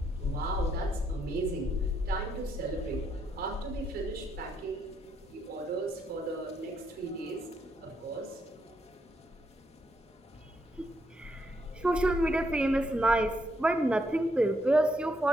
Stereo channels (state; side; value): normal; both; correlation 0.76